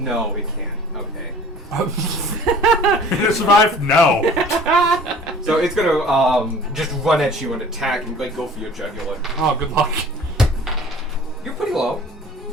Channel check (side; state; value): both; normal; correlation 0.48